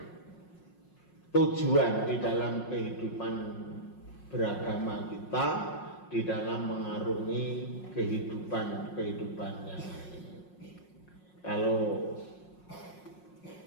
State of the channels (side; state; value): right; late; 5.5 ms